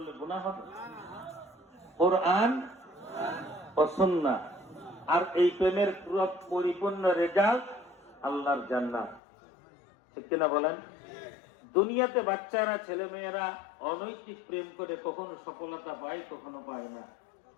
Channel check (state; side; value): drops out; right; at 9.2 s